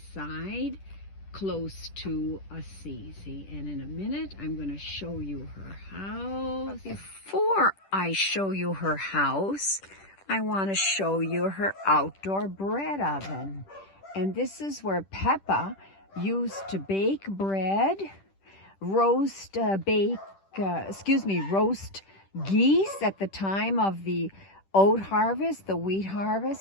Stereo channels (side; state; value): right; late; 10 ms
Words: close to Assisi. And in a minute, I'm going to show you her house. But before I show you her house, I want to show you her outdoor bread oven. And this is where Peppa used to bake bread, roast geese at the time of the oat harvest, the wheat